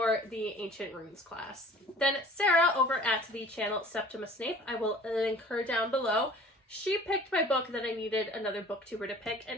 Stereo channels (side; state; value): both; normal; correlation 0.47